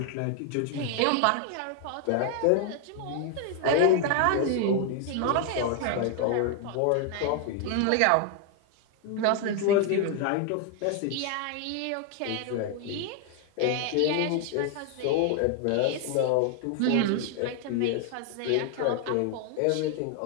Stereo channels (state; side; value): different; both; correlation 0.00